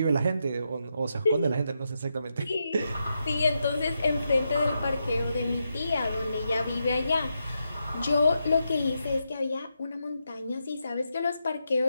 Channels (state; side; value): inverted; both; correlation -0.85